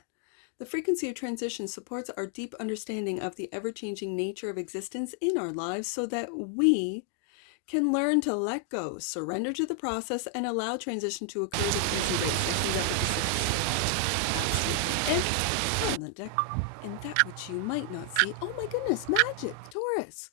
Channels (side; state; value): both; different; correlation 0.00